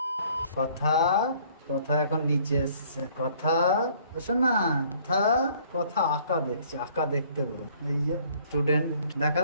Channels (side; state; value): both; inverted; correlation -0.58